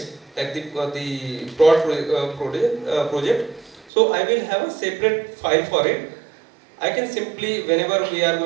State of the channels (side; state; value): left; drops out; at 3.9 s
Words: like the project, so I will have a separate file for it. I can simply, whenever we are